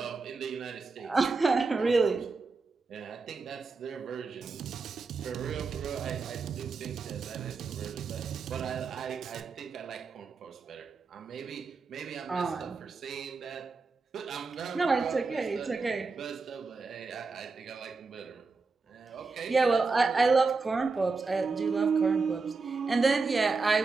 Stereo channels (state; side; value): quieter; left; 4.3 dB